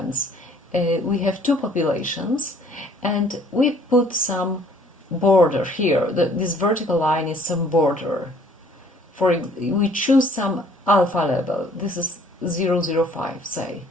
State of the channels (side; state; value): both; normal; correlation 0.58